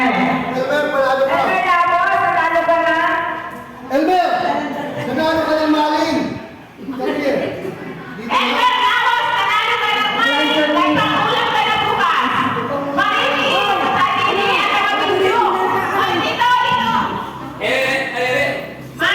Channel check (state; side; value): identical; both; correlation 1.00